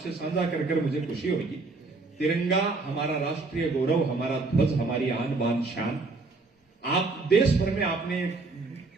साझा कर मुझे खुशी होगी। तिरंगा हमारा राष्ट्रीय गौरव, हमारा ध्वज, हमारी आन बान शान। आप देश भर में आपने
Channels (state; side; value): quieter; left; 3.7 dB